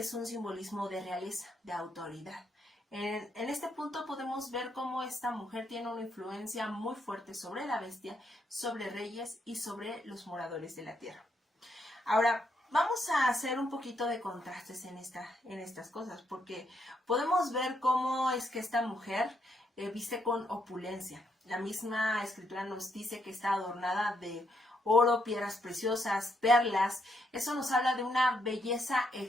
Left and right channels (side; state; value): both; normal; correlation 0.76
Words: un simbolismo de realeza, de autoridad. En este punto podemos ver cómo esta mujer tiene una influencia muy fuerte sobre la bestia, sobre reyes y sobre los moradores de la tierra. Ahora, vamos a hacer un poquito de contrastes en estas cosas, porque podemos ver cómo es que esta mujer viste con opulencia. La misma escritura nos dice que está adornada de oro, piedras preciosas, perlas. Eso nos habla de una belleza